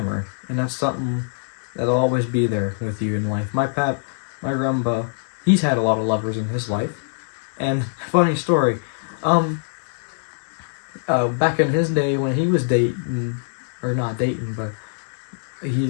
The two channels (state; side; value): silent; right; digital silence